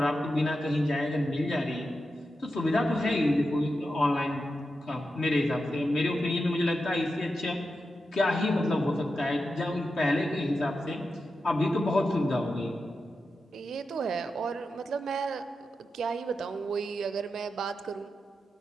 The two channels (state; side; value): normal; both; correlation 0.89